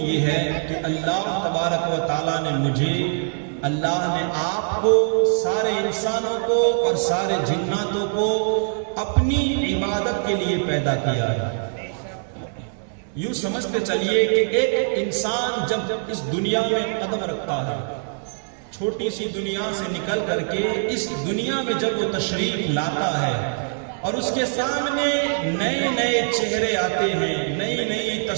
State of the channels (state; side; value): silent; left; digital silence